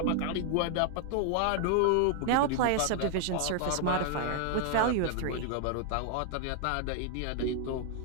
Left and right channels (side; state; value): both; different; correlation 0.00